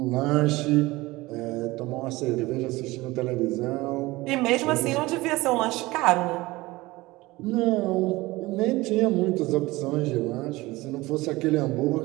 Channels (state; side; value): quieter; left; 20.2 dB